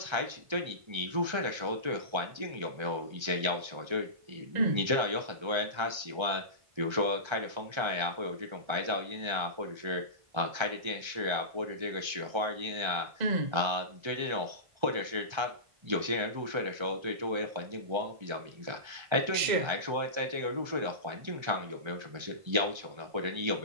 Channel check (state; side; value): late; left; 1.3 ms